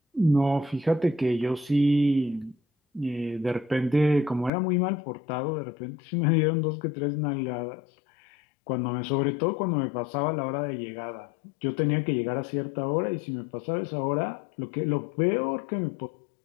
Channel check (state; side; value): drops out; right; at 4.5 s